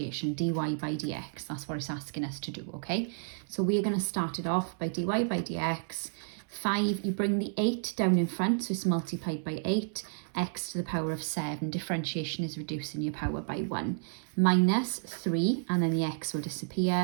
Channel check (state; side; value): silent; left; 56 dB below the other